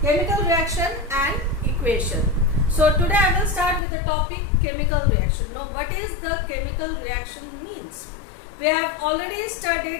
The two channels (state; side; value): drops out; right; at 3.8 s